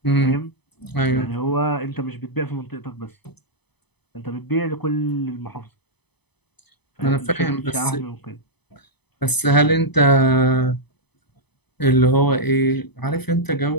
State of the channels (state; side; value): late; right; 0.98 ms